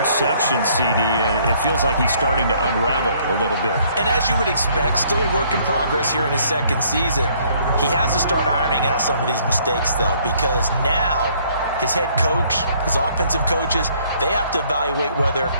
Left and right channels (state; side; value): inverted; both; correlation -0.63